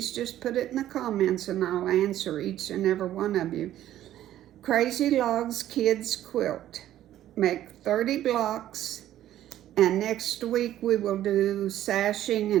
just put it in the comments and I'll answer each and every one of you. Crazy Logs Kids Quilt. Make 30 blocks, and next week we will do sashing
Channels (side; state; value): left; quieter; 12.7 dB